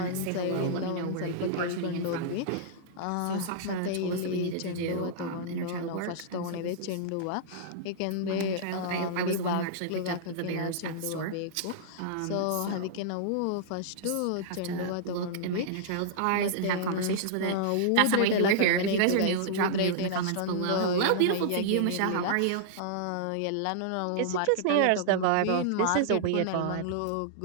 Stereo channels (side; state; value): both; different; correlation -0.02